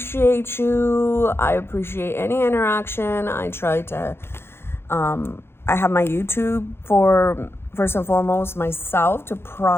you. I appreciate any interaction. I try to, I have my YouTube for, first and foremost, myself to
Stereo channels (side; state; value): right; late; 0.12 ms